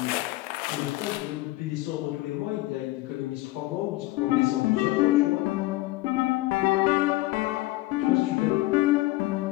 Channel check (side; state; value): right; quieter; 18.8 dB